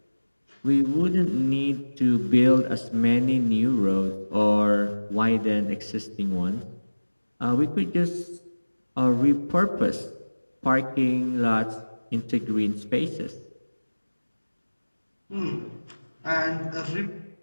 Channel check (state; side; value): inverted; both; correlation -1.00